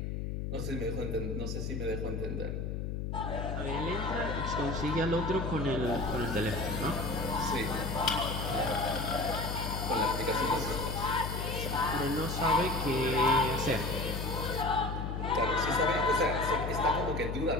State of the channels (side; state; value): left; noise; hum, 3 dB below the sound